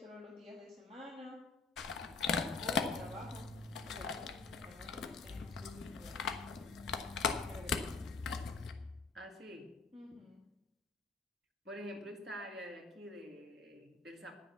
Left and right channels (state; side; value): quieter; right; 4.3 dB